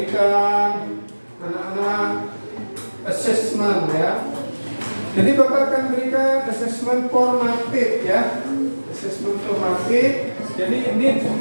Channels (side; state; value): both; inverted; correlation -1.00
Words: anak-anak assessment ya. Jadi Bapak akan berikan assessment formatif ya. Assessment formatif. Jadi ini